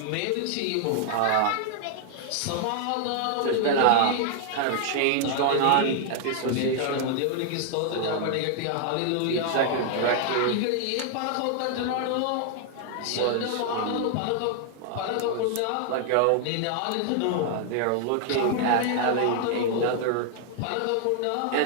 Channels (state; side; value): different; both; correlation 0.00